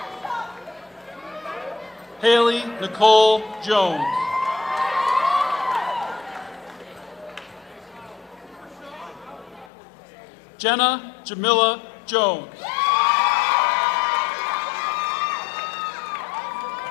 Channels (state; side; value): drops out; right; at 9.7 s